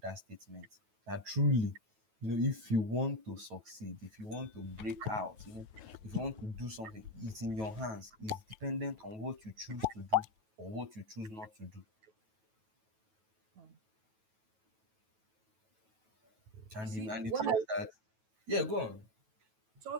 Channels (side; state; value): left; late; 9.2 ms